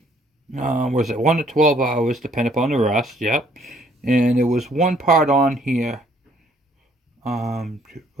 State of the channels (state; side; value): normal; both; correlation 0.63